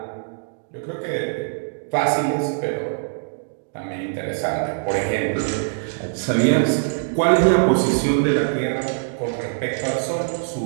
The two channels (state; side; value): silent; left; digital silence